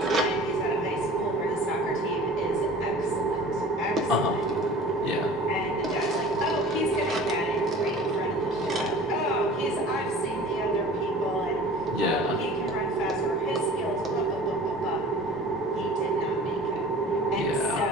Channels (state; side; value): normal; both; correlation 0.43